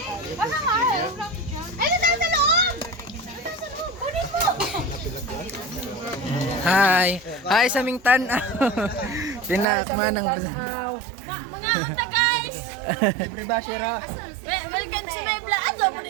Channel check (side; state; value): left; drops out; at 9.7 s